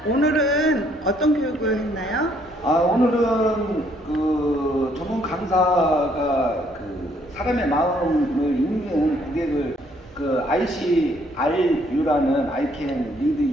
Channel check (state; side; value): normal; both; correlation 0.67